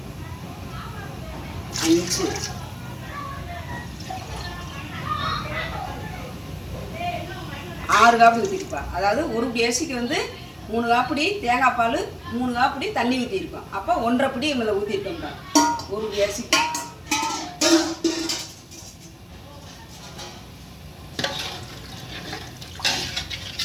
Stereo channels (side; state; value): both; identical; correlation 1.00